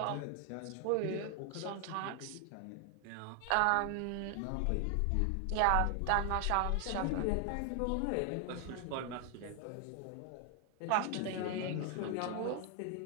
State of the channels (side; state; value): both; different; correlation 0.00